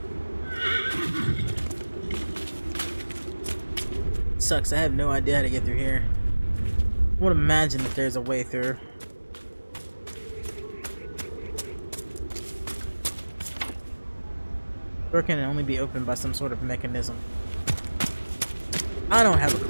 Sucks. I have no idea how to get through here. I would imagine that there's a way through. Door can only be opened by some sort of mechanism. I don't have a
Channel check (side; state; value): both; inverted; correlation -1.00